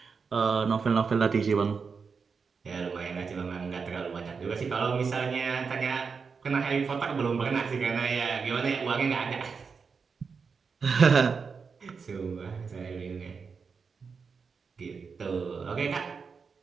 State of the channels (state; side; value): quieter; left; 5.4 dB